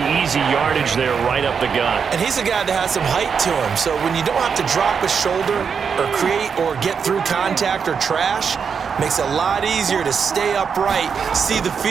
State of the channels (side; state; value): left; quieter; 6.4 dB